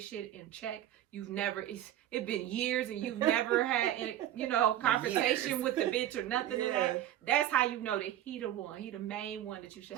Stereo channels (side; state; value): left; quieter; 12.3 dB